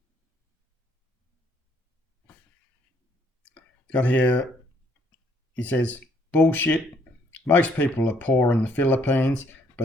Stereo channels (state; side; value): normal; both; correlation 0.66